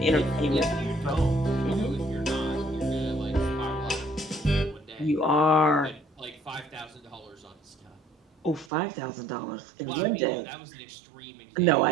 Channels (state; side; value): drops out; left; at 8.7 s